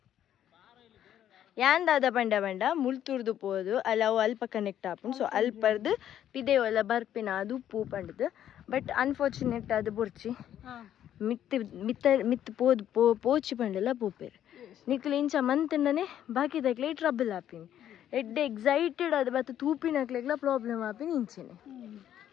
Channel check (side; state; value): right; quieter; 10.8 dB